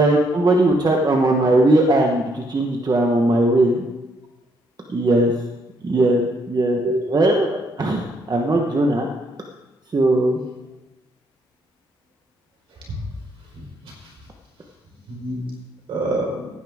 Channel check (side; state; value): both; normal; correlation 0.72